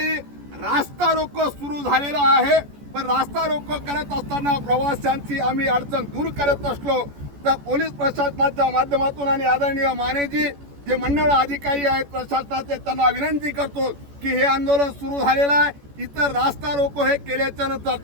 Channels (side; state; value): left; late; 14 ms